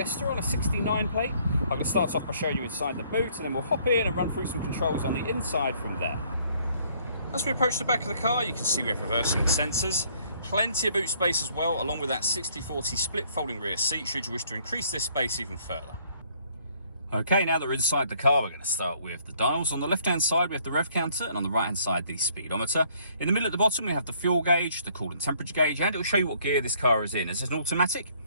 on a 69 plate. I'm going to start off by showing you inside the boot, and then we'll hop in and run through some controls on the inside from there. As we approach the back of the car, you can see we have reversing sensors, plenty of boot space as well, along with that 60/40 split folding rear seat should you wish to increase this space even further. Okay, now that we're inside the car, we're going to start with the dials. On the left-hand side, we have the rev counter, and on the right-hand side, the speedometer. In the middle at the bottom, we have the fuel gauge, the coolant temperature gauge, and it will show you what gear this car is in. As it's an automatic,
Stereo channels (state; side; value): inverted; both; correlation -0.63